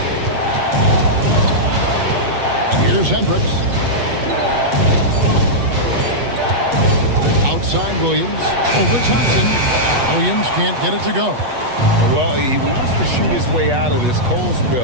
Here's Hendricks. Outside Williams. Over Thompson. Williams can't get it to go. Well, he wants to shoot his way out of this cold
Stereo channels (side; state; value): left; late; 8.2 ms